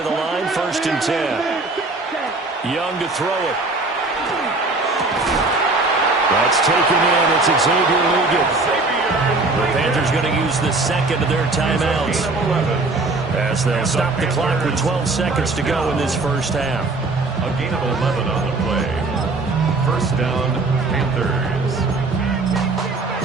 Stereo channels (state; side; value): quieter; left; 3.4 dB